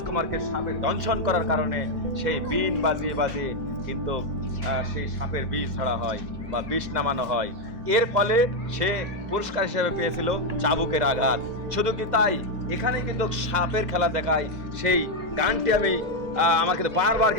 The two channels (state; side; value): late; left; 2.0 ms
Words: সাপের দংশন করার কারণে সেই বিন বাজিয়ে বাজিয়ে কিন্তু সেই সাপের বিষ ছাড়া হয় বা বিষ নামানো হয়। এর ফলে সে পুরস্কার হিসেবে পেয়েছিল চাবুকের আঘাত। শুধু কি তাই, এখানে কিন্তু সাপের খেলা দেখায় সেই গানটি আমার কিন্তু বারবার